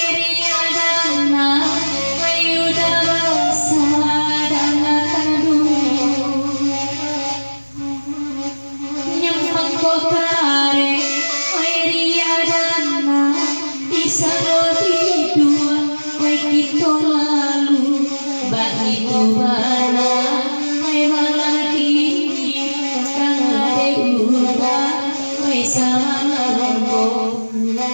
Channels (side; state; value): both; inverted; correlation -1.00